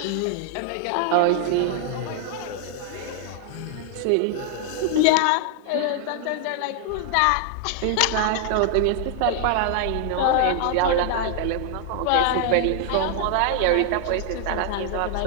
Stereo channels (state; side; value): different; both; correlation 0.00